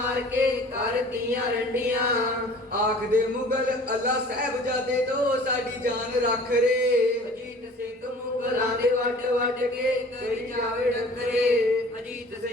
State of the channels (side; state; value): both; normal; correlation 0.47